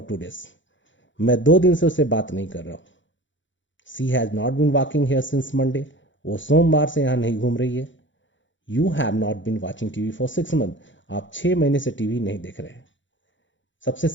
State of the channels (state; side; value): late; right; 0.54 ms